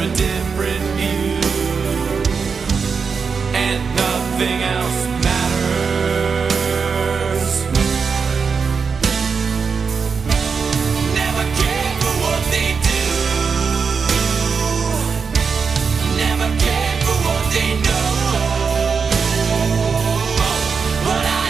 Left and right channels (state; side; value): quieter; left; 5.6 dB